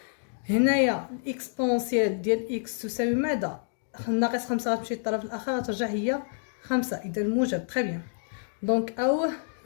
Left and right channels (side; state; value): right; silent; digital silence